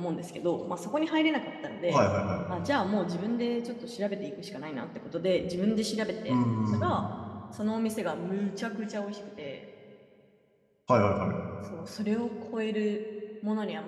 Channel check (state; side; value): identical; both; correlation 1.00